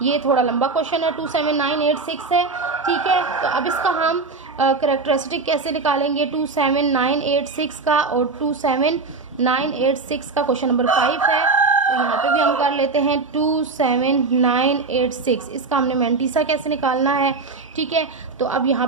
ये थोड़ा लंबा क्वेश्चन है, 27986 है, ठीक है। तो अब इसका हम करेक्टरिस्टिक कैसे निकालेंगे 27986 का, और 27986 का क्वेश्चन नंबर 5 है, तो यहाँ पे भी हम कर लेते हैं 27986, इसका हमने मेंटिसा कैसे निकालना है, ठीक है। तो अब यहाँ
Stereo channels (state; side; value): quieter; left; 4.1 dB